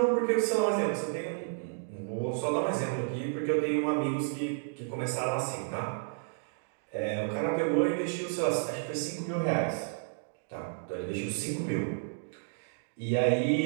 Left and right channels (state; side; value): silent; left; digital silence